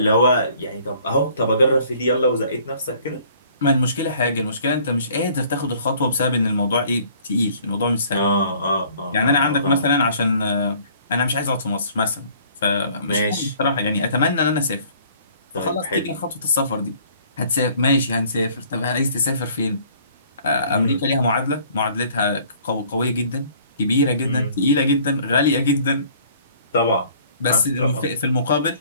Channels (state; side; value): inverted; both; correlation -0.56